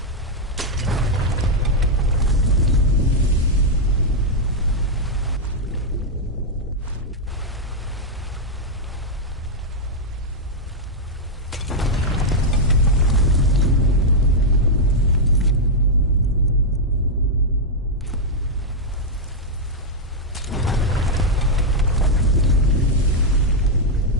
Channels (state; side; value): normal; both; correlation -0.02